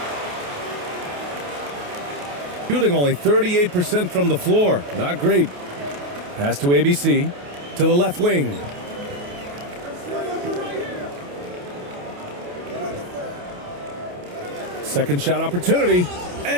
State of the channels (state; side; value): late; left; 28 ms